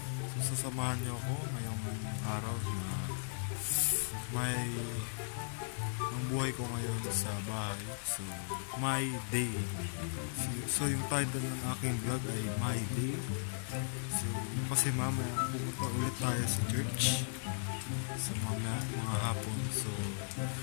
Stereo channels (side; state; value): right; silent; digital silence